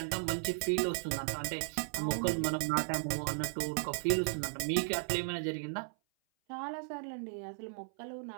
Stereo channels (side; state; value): left; silent; 54 dB below the other